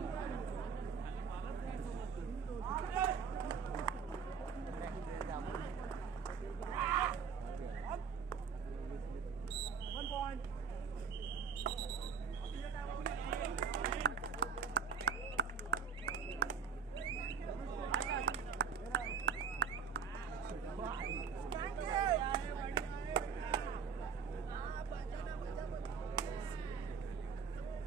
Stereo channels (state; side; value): quieter; left; 6.0 dB